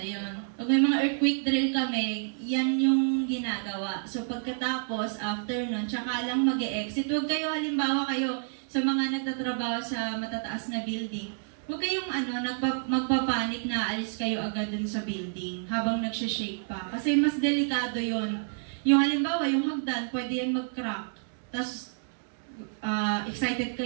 Pag may mga earthquake drill kami, yan yung ginagawa. So, pagkatapos, after nun, tsaka lang mag-e-exit. Huwag kayo, halimbawa kayo, sa mga nagtatrabaho sa matataas na building, huwag kayong magpapanik na alis kayo agad dun sa building habang nagsishake pa. Kasi mas delikado yon. Yung halimbawa, yung hagdan, pwede yan mag-crack. Tapos, excited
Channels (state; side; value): silent; left; digital silence